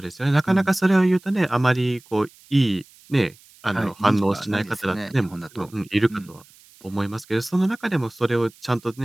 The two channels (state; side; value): noise; right; hiss, 26 dB below the sound